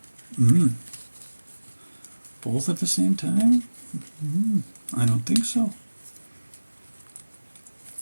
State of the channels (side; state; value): both; inverted; correlation -1.00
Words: Both at the same time? I don't think so.